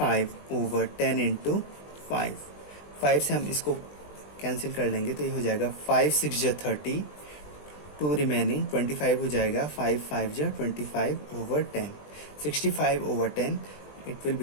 over 10 into 5. 5 से हम इसको कैंसिल कर लेंगे तो ये हो जाएगा 5 6 जा 30, 2 रिमेनिंग 25 हो जाएगा, 5 5 जा 25 over 10, 65 over 10. It will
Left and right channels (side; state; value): right; late; 20 ms